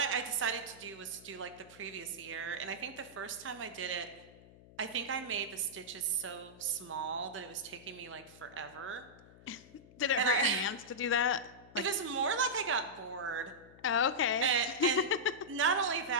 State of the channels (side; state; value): left; noise; hum, 22 dB below the sound